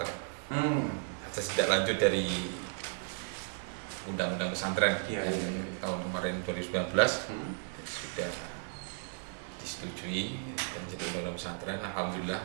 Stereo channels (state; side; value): silent; left; 55 dB below the other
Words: Ada tidak lanjut dari undang-undang pesantren yang tahun kemarin 2019 sudah disetujui dan jadi undang-undang pesantren.